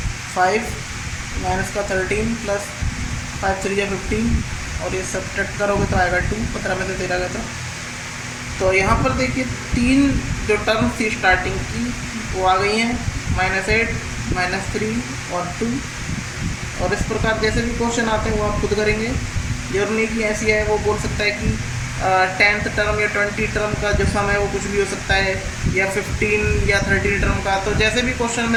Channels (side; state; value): both; identical; correlation 1.00